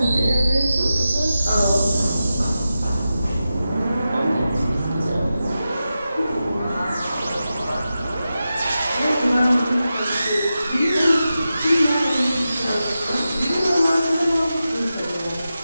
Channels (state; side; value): inverted; both; correlation -0.92